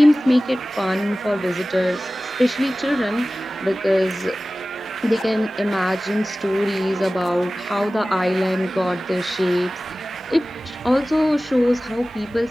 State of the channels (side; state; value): both; normal; correlation 0.97